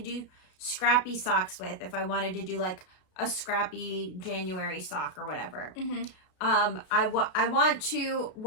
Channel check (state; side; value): late; right; 33 ms